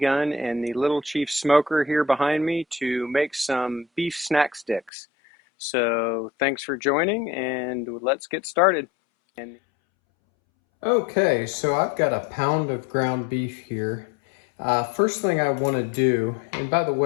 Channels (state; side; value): drops out; right; at 4.9 s